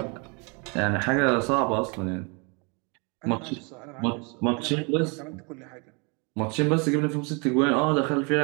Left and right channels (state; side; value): quieter; left; 32.1 dB